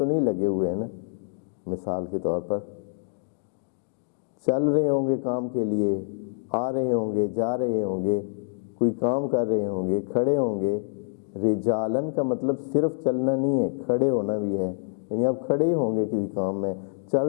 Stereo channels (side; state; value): right; silent; digital silence